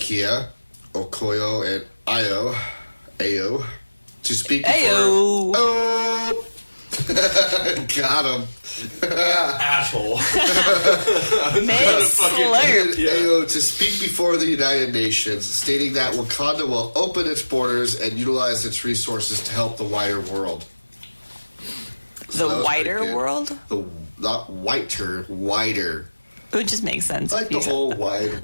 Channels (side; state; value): both; inverted; correlation -1.00